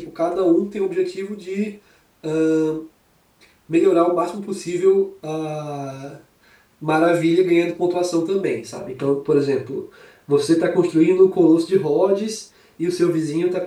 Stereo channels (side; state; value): both; identical; correlation 1.00